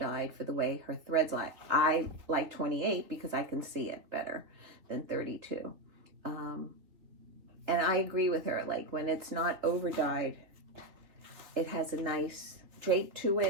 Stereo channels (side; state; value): left; late; 3.2 ms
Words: for the way her threads lie. I like 28 because I can see it better than 32. And I agree with her, like when it's not over dyed, it has a nice drape to